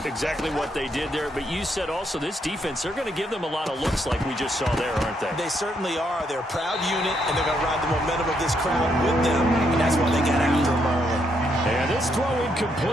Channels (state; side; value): normal; both; correlation 0.76